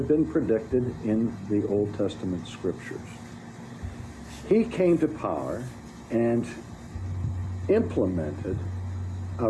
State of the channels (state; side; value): identical; both; correlation 1.00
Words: been predicted in the Old Testament scriptures. He came to power and implemented a